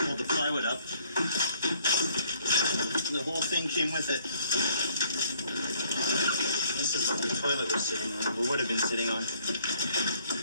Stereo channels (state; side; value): inverted; both; correlation -0.62